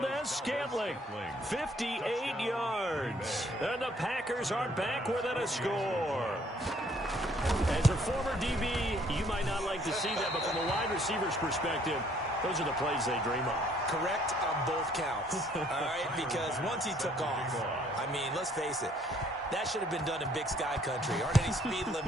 58 yards. And the Packers are back within a score. As a former DB, you might not like to see that, but from a wide receiver's perspective, those are the plays they dream of. Correct on both counts, all right? Because once he took off, I mean, let's face it, that should have been done in Big Sky Country. Aren't any speed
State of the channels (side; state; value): both; normal; correlation 0.63